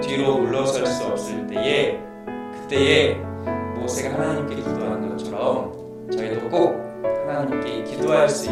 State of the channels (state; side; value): identical; both; correlation 1.00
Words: 뒤로 물러설 수 없을 때에, 그때에 모세가 하나님께 기도하는 것처럼 저희도 꼭 하나님께 기도할 수